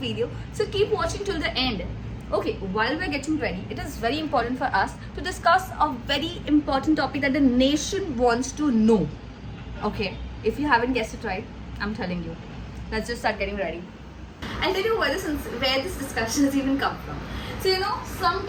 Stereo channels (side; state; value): both; identical; correlation 1.00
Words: So keep watching till the end. Okay, while we're getting ready, it is very important for us to discuss a very important topic that the nation wants to know. Okay, if you haven't guessed it right, I'm telling you. Let's just start getting ready. I'll tell you where this discussion has even come from. So you know,